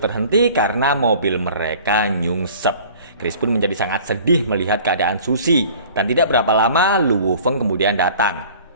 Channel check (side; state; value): both; inverted; correlation -0.48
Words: karena mobil mereka nyungsep. Chris pun menjadi sangat sedih melihat keadaan Susie, dan tidak berapa lama Luo Feng kemudian datang.